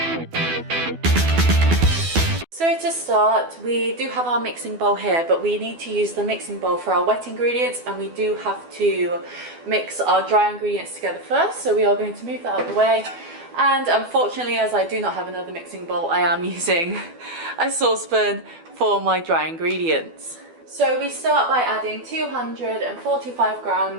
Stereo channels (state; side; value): late; left; 12 ms